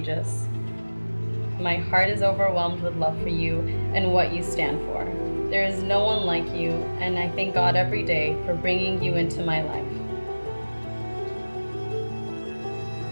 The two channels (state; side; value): inverted; both; correlation -1.00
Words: My heart is overwhelmed with love for you and what you stand for. There is no one like you, and I thank God every day for bringing you into my life.